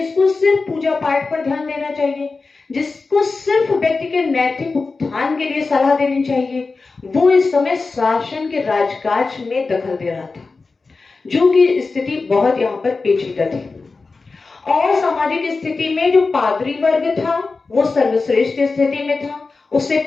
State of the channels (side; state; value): right; quieter; 4.0 dB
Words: सिर्फ पूजा पाठ पर ध्यान देना चाहिए, जिसको सिर्फ व्यक्ति के नैतिक उत्थान के लिए सलाह देनी चाहिए, वो इस समय शासन के राजकाज में दखल दे रहा था। जो कि स्थिति बहुत यहाँ पर पेचीदा थी। और सामाजिक स्थिति में जो पादरी वर्ग था वो सर्वश्रेष्ठ स्थिति में था, उससे